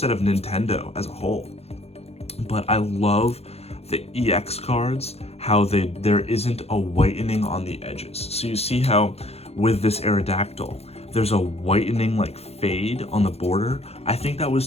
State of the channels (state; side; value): late; right; 0.30 ms